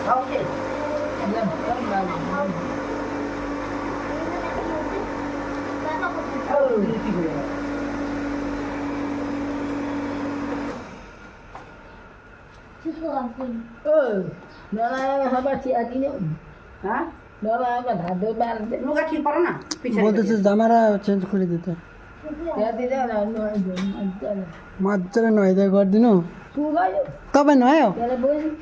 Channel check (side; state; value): both; identical; correlation 1.00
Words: ওকে হ্যাঁ লোকা ঠিক পারো না বলতেছে জামারা চেঞ্জ করে দিতে মাঝে নয় দেয় ঘর দিন কবে নয়